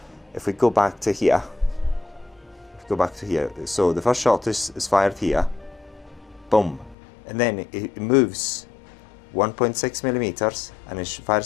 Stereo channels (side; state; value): right; drops out; at 7.0 s